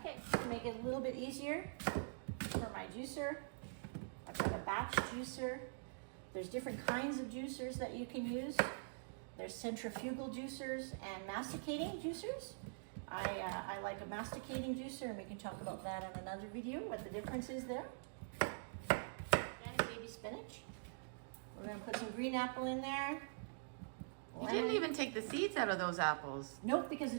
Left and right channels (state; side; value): silent; left; digital silence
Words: to make it a little bit easier for my juicer, I've got a batch juicer. There's different kinds of juicers that you can use. There's centrifugal juicers and masticating juicers. I like a masticating juicer, and we can talk about that in another video, what the difference is there. And baby spinach. We're going to put some green apple in there. You didn't even take the seeds out of those apples. Nope, because